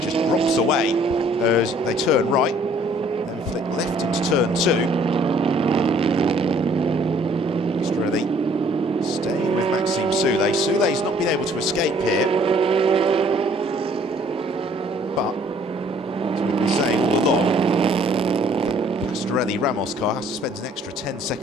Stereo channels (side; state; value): both; normal; correlation 0.59